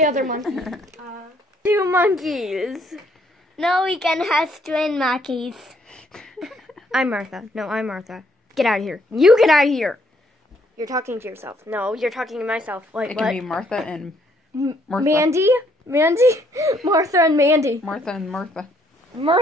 other monkey? 2 monkeys. No, we can have twin monkeys. I'm Martha. No, I'm Martha. Get out of here. You get out of here. You're talking to yourself. No, you're talking to myself. Like It what? can be Martha and Martha. Mandy? Martha and Mandy. Martha and Martha.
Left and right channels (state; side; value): normal; both; correlation 0.68